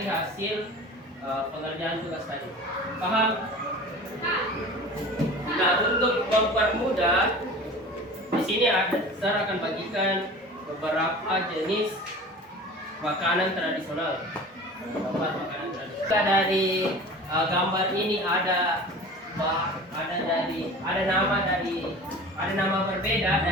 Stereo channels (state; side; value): normal; both; correlation 0.39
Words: hasil pengerjaan tugas tadi. Paham? Nah, untuk mempermudah, di sini saya akan bagikan beberapa jenis makanan tradisional. Dari gambar ini ada nama berbeda